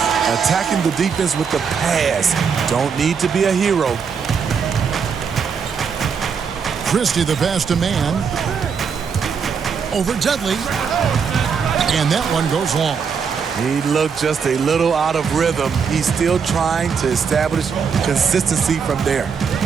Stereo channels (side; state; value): left; quieter; 6.3 dB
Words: Attacking the defense with the pass. Don't need to be a hero. Christie the pass to Man. Over Dudley. And that one goes long. He looked just a little out of rhythm. He's still trying to establish consistency from there.